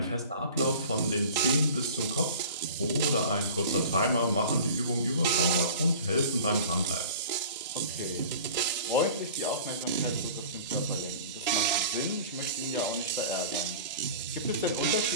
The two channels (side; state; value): both; inverted; correlation -0.42